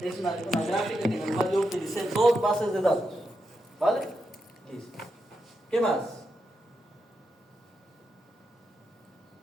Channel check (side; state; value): both; normal; correlation 0.85